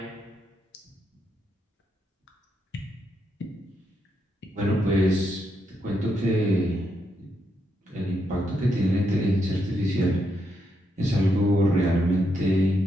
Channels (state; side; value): normal; both; correlation 0.80